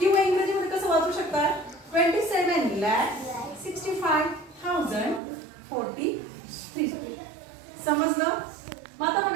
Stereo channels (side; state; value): left; drops out; at 5.2 s